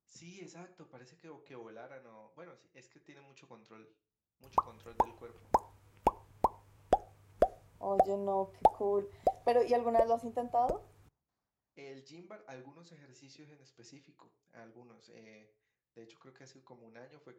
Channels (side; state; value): both; identical; correlation 1.00